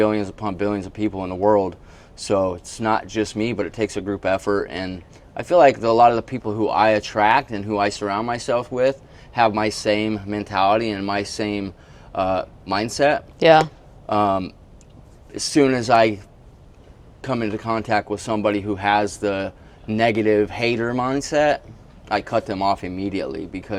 upon billions of people in the world. So it's not just me, but it takes a group effort. And I feel like a lot of the people who I attract and who I surround myself with have my same mentality and my same mindset. Yeah. As soon as I come into contact with somebody who has the negative hater mindset, I cut them off immediately,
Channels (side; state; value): both; identical; correlation 1.00